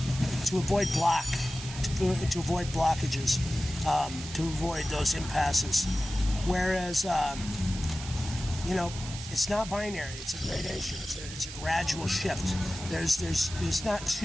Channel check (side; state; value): right; noise; hiss, 11 dB below the sound